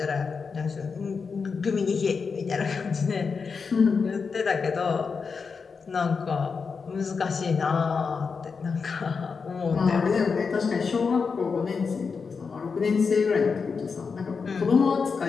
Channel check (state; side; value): quieter; right; 5.3 dB